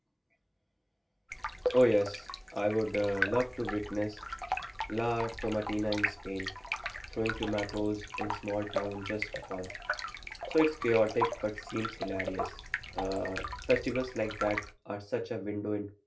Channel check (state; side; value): identical; both; correlation 1.00